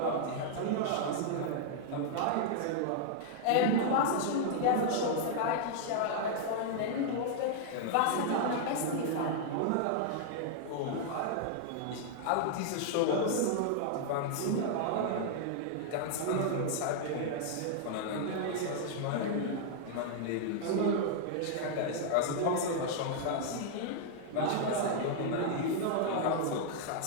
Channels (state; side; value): different; both; correlation -0.01